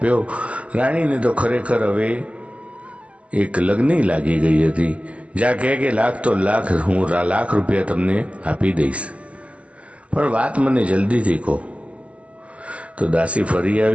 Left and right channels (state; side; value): late; left; 0.063 ms